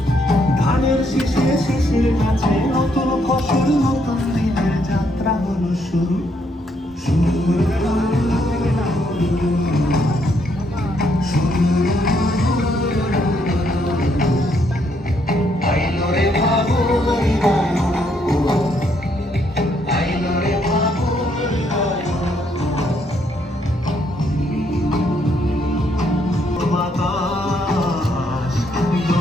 ধানের শীষে শিশির কাছে নতুন ফসল নতুন দিনের যাত্রা হলো শুরু শুরু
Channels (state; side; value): normal; both; correlation 0.73